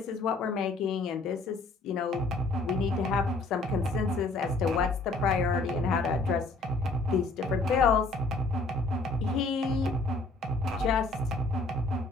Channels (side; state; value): right; quieter; 3.3 dB